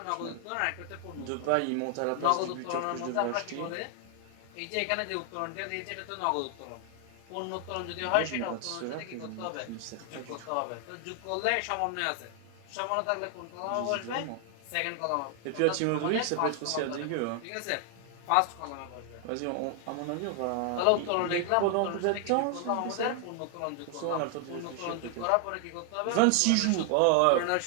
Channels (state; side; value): different; both; correlation 0.00